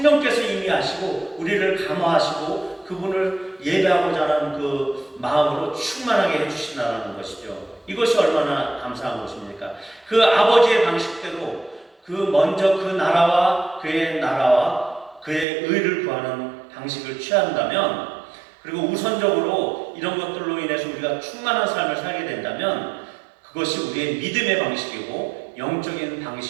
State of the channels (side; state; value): left; drops out; at 15.5 s